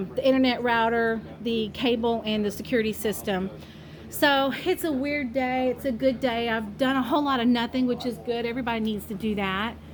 internet router, the cable, and the security system. So it's a weird day. It's a good day. I've done a whole lot of nothing, which is good. Everybody needs to do that.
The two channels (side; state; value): both; identical; correlation 1.00